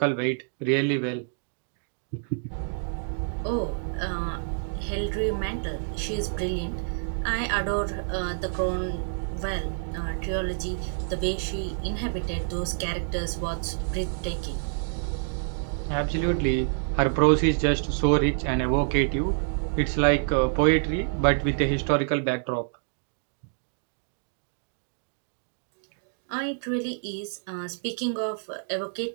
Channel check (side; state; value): left; silent; digital silence